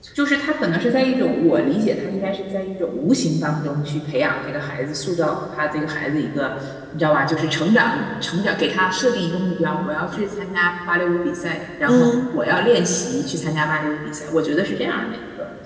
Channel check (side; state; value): both; identical; correlation 1.00